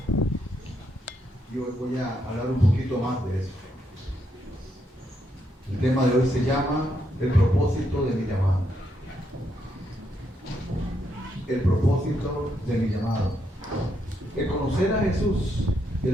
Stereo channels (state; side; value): normal; both; correlation 0.78